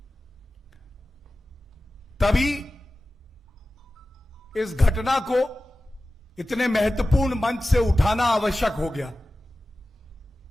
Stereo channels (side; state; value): both; normal; correlation 0.96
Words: तभी इस घटना को इतने महत्वपूर्ण मंच से उठाना आवश्यक हो गया।